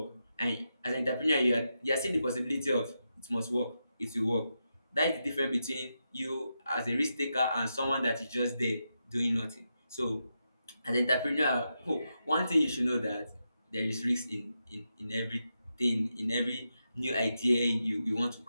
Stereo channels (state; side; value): inverted; both; correlation -0.87